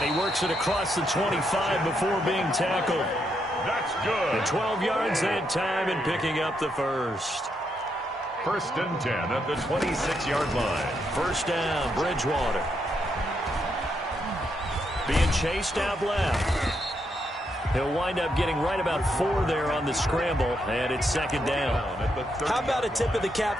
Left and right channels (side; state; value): both; normal; correlation 0.79